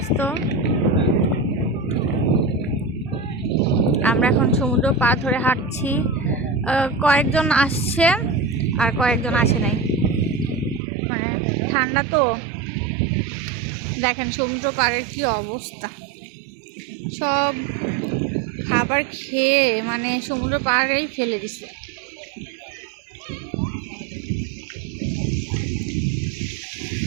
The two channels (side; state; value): left; drops out; at 10.8 s